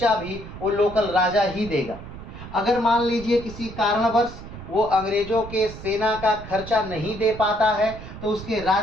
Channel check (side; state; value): right; noise; rumble, 13 dB below the sound